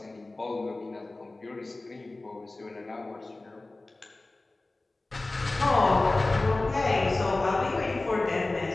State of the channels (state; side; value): quieter; right; 3.0 dB